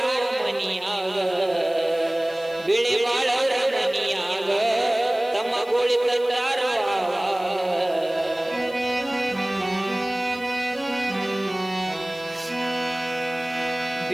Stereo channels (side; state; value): left; noise; hiss, 24 dB below the sound